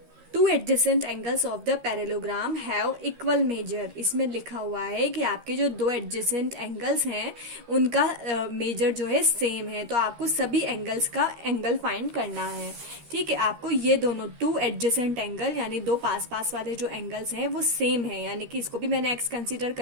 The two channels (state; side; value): late; left; 13 ms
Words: Two adjacent angles of the parallelogram have equal major. इसमें लिखा हुआ है कि आपके जो दो एडजेसेंट एंगल्स हैं उनका मेजर जो है सेम है, तो आपको सभी एंगल्स का एंगल फाइंड करना है। ठीक है, आपको ये दोनों टू एडजेसेंट एंगल यानी दो पास पास वाले जो एंगल्स हैं वो सेम है, यानी कि इसको भी मैंने एक्स कंसीडर